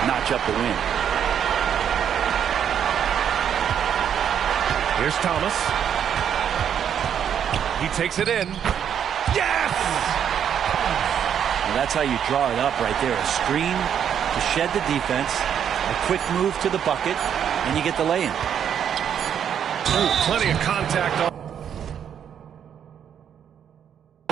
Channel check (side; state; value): left; quieter; 8.7 dB